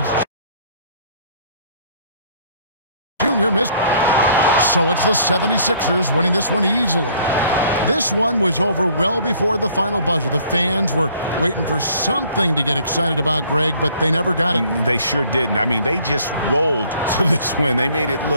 Junior missed. So it's the 76ers winning this one easily. This one was over well before the final buzzer. The fans were waiting for something to get excited about, Greg, but they never got it. They sure didn't. I mean, they just rolled to this win. They made it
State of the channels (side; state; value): both; inverted; correlation -0.58